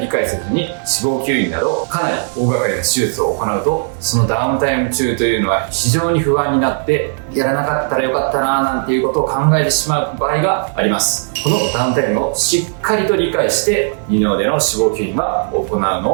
解せずに脂肪吸引などかなり大掛かりな手術を行うとそのダウンタイム中というのは非常に不安になってやらなかったらよかったななんていうことを考えてしまう場合があります。このダウンタイムをしっかりと理解して二の腕の脂肪吸引は行うの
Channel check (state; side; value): silent; left; 60 dB below the other